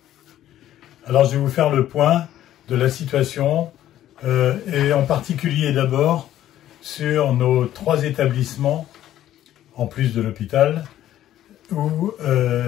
Alors je vais vous faire le point de la situation et en particulier d'abord sur nos 3 établissements, en plus de l'hôpital, où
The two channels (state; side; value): quieter; right; 12.6 dB